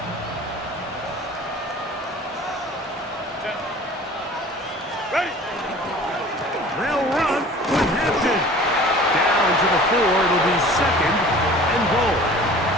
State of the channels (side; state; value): both; normal; correlation 0.45